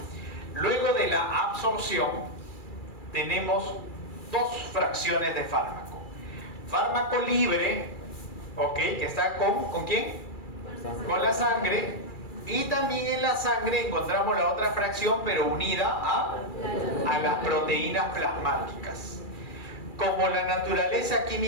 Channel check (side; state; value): right; late; 2.3 ms